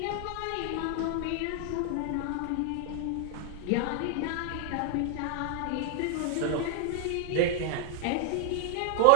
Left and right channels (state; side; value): different; both; correlation 0.00